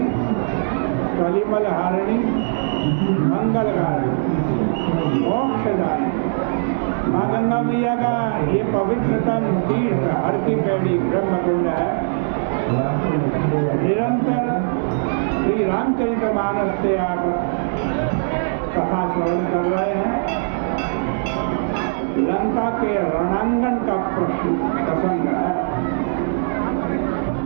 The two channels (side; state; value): left; silent; digital silence